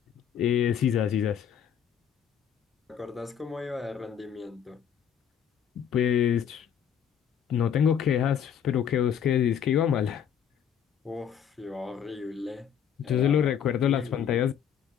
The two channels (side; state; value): right; quieter; 8.5 dB